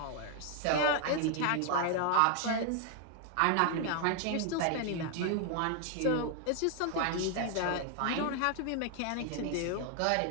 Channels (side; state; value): both; different; correlation 0.00